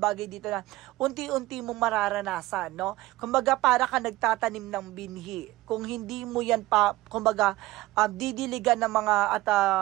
dito na unti-unti mong mararanasan. No? Kumbaga para ka nagtatanim ng binhi. Kung hindi mo yan kumbaga didiligan ng mga at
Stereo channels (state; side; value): quieter; left; 18.1 dB